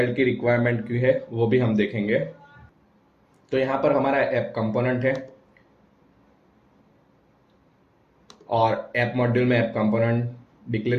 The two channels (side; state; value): both; identical; correlation 1.00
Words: की रिक्वायरमेंट क्यों है वो भी हम देखेंगे। तो यहाँ पर हमारा ऐप कंपोनेंट है और ऐप मॉड्यूल में ऐप कंपोनेंट